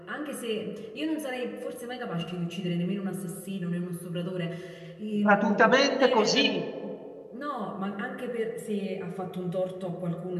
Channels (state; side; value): identical; both; correlation 1.00